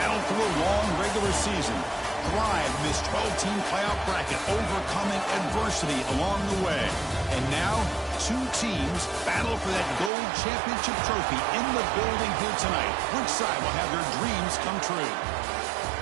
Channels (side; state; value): left; drops out; at 10.1 s